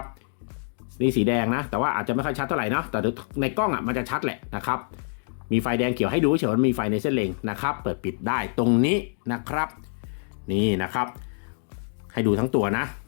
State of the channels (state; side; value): silent; right; digital silence